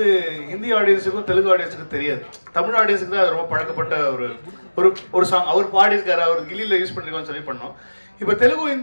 ஹிந்தி ஆடியன்ஸுக்கும் தெலுங்கு ஆடியன்ஸுக்கும் தெரியாது. தமிழ் ஆடியன்ஸுக்கு தான் அது ரொம்ப பழக்கப்பட்ட ஒரு சாங். அவர் பாடியிருக்காரு, அவர் கில்லியில யூஸ் பண்ணிருக்கோம்னு சொல்லி பண்ணோம். இப்போ தெலுங்கு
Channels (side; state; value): both; inverted; correlation -1.00